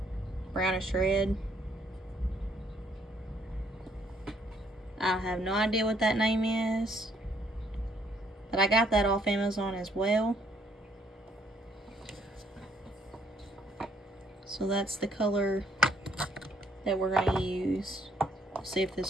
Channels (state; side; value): normal; both; correlation 0.68